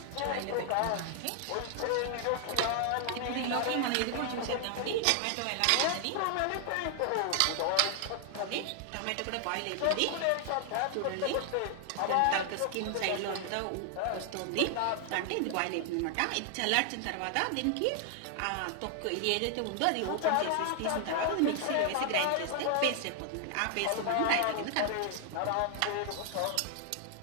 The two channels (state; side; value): different; both; correlation 0.00